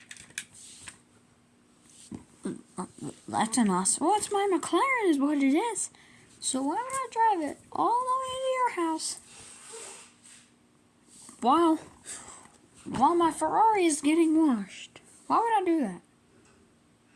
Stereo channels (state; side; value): identical; both; correlation 1.00